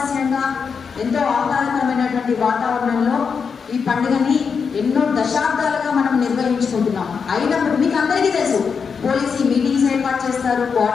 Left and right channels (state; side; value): quieter; right; 5.9 dB